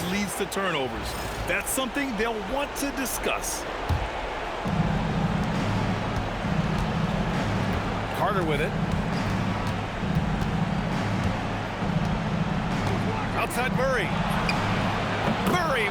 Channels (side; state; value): both; identical; correlation 1.00